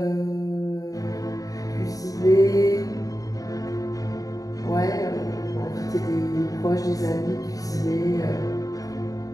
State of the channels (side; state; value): right; late; 0.17 ms